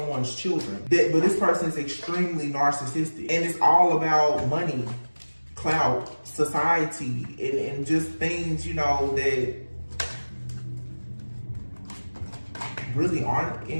children. But this person is extremely narcissistic. And it's all about money, clout, society, and just things, you know, that really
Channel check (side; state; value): both; inverted; correlation -1.00